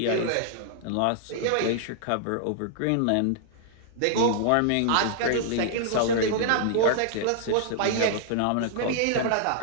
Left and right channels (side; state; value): both; different; correlation -0.01